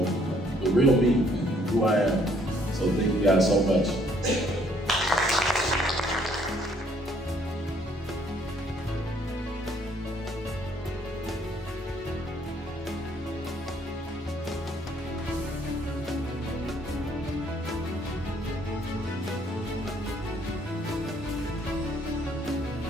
the real me and who I am. So thank you guys so much.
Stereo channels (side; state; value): both; normal; correlation 0.65